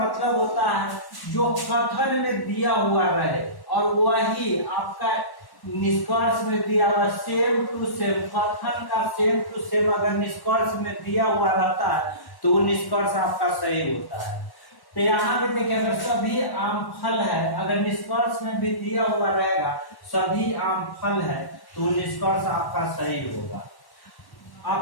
होता है जो कथन में दिया हुआ रहे और वही आपका निष्कर्ष में दिया हुआ सेम टू सेम, कथन का सेम टू सेम अगर निष्कर्ष में दिया हुआ रहता है तो वो निष्कर्ष आपका सही होता है। तो यहाँ पे देखिए अगर सभी आम फल है, अगर निष्कर्ष में भी दिया हुआ रहेगा सभी आम फल है, तो निष्कर्ष आपका सही होगा।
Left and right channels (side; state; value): right; late; 1.1 ms